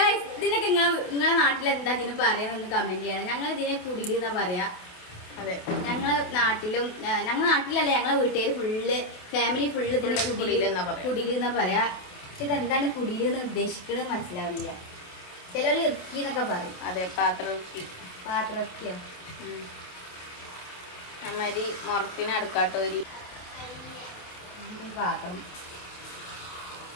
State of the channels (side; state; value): right; late; 28 ms